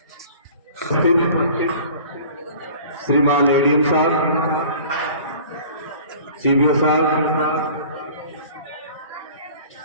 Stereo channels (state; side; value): inverted; both; correlation -0.46